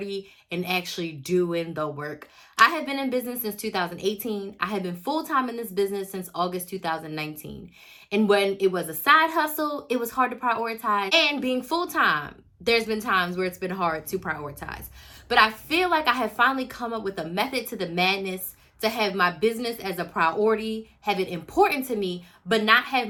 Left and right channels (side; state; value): both; identical; correlation 1.00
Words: and actually doing the work. I have been in business since 2018. I have been full-time in this business since August 2019. And when it was a side hustle, it was hard to prioritize. And being full-time, there's been times where it's been hard to prioritize. But I feel like I have finally come up with a method to the madness to have my business as a priority, have it important to me, but not have